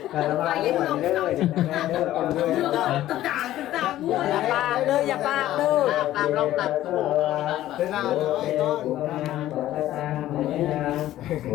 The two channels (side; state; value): right; quieter; 13.9 dB